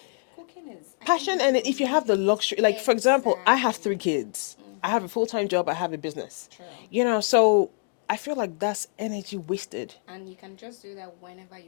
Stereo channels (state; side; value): silent; right; 56 dB below the other